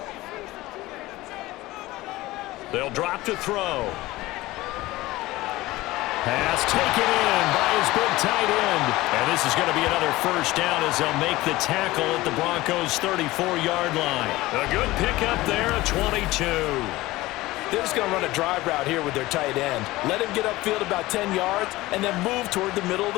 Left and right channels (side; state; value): right; quieter; 18.6 dB